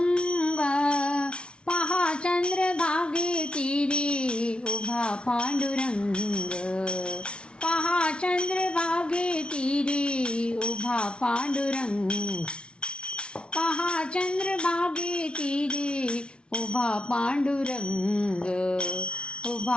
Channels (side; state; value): right; late; 0.058 ms